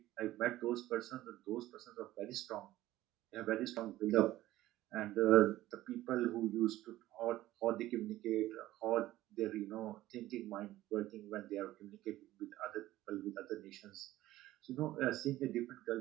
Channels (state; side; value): quieter; left; 15.5 dB